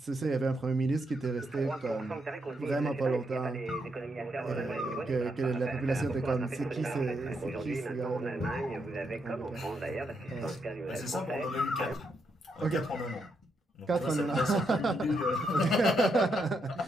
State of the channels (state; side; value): normal; both; correlation 0.79